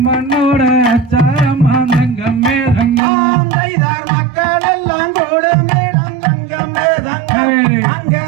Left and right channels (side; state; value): left; drops out; at 3.0 s